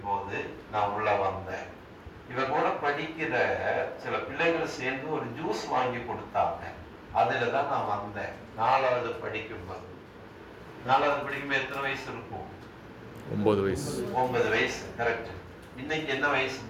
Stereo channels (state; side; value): identical; both; correlation 1.00